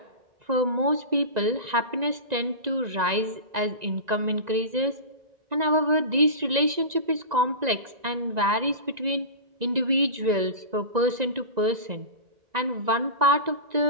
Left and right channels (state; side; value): late; left; 1.9 ms